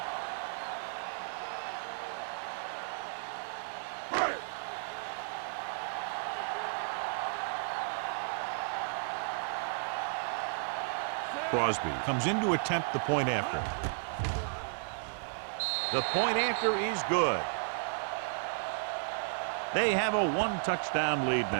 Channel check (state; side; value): silent; left; 55 dB below the other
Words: Crosby comes in to attempt the point after. The point after is good. They have a 1-touchdown lead